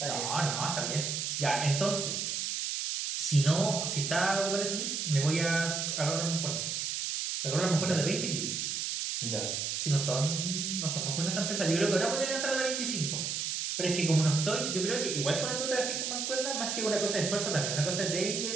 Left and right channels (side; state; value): right; noise; hiss, 2 dB below the sound